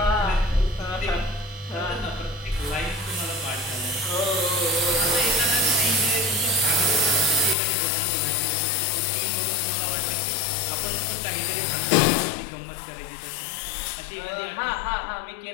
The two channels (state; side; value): drops out; right; at 7.6 s